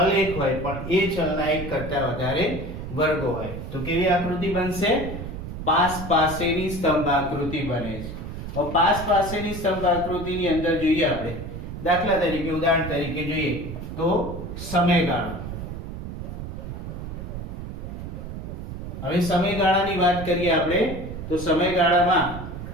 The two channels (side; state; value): right; noise; rumble, 8 dB below the sound